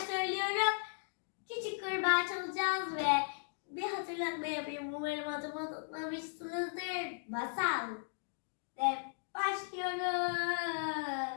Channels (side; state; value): right; silent; digital silence